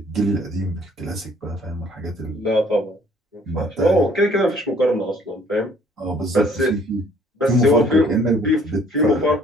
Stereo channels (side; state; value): both; normal; correlation 0.59